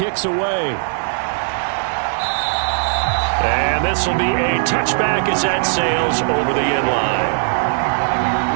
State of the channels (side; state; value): left; silent; digital silence